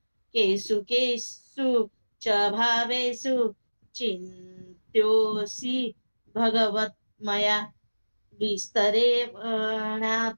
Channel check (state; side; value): inverted; both; correlation -1.00